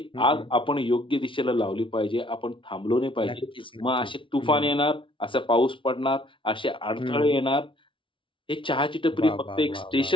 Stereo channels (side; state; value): right; late; 0.25 ms